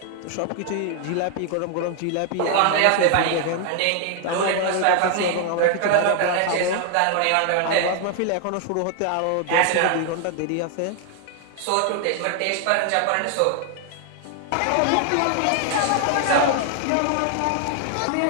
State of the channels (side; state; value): both; different; correlation 0.00